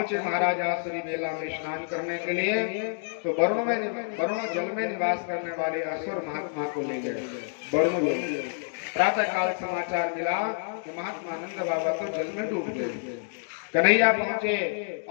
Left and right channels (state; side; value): silent; right; digital silence